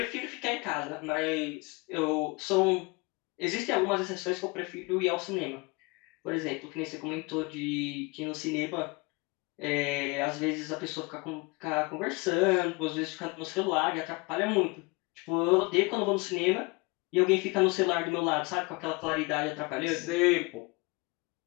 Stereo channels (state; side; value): quieter; right; 26.8 dB